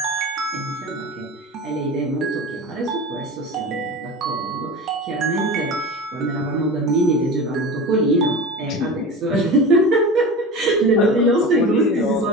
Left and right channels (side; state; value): both; normal; correlation 0.31